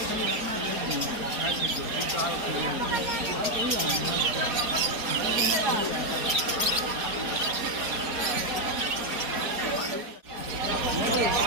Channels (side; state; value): left; late; 4.5 ms